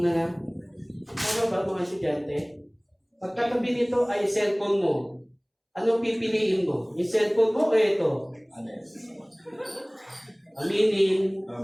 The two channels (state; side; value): identical; both; correlation 1.00